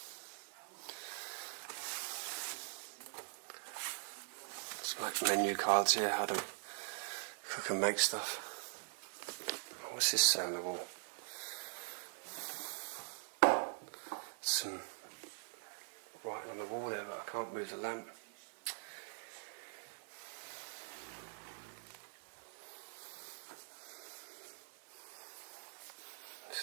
Like menu cards here, how to cook and make stuff. What's this say on the wall? Some writing on the wall there, but I can't move the lamp.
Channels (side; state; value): left; silent; digital silence